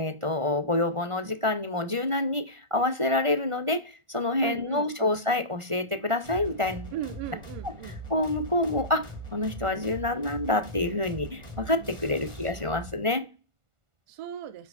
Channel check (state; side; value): late; left; 1.4 ms